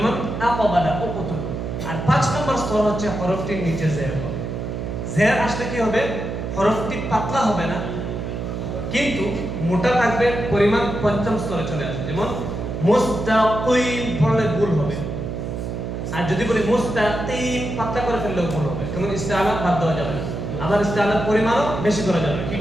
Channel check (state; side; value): noise; right; hum, 5 dB below the sound